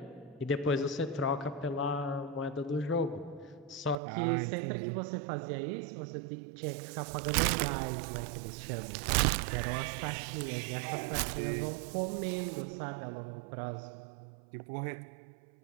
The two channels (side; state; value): left; drops out; at 4.0 s